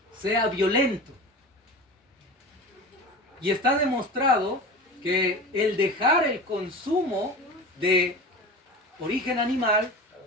sea violento. Y está demostrado que el dejar el consumo de origen animal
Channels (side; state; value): both; normal; correlation 0.32